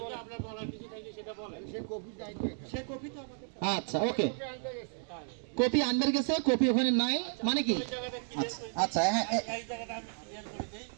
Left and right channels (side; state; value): left; silent; 56 dB below the other